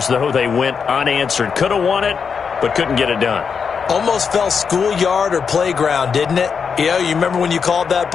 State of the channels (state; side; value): quieter; right; 6.1 dB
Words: though, they went unanswered. Could have won it, but couldn't get it done. Almost felt schoolyard or playground, didn't it? You remember when you called that